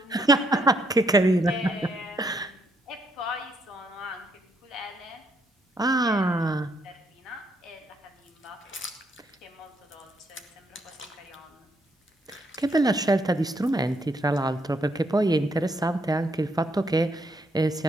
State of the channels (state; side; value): normal; both; correlation 0.73